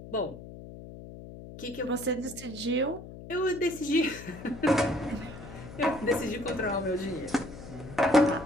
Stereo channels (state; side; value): noise; left; hum, 14 dB below the sound